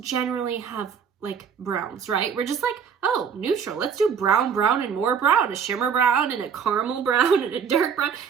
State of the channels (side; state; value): left; quieter; 7.0 dB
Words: have like browns, right? We're just like, oh, neutral. Let's do brown, brown, and more brown. A shimmer brown and a caramel brown and a dark brown.